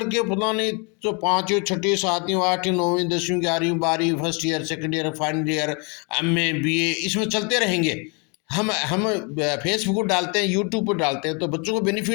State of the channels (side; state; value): right; quieter; 33.0 dB